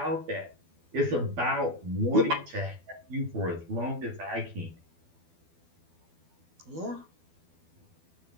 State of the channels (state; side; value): late; left; 12 ms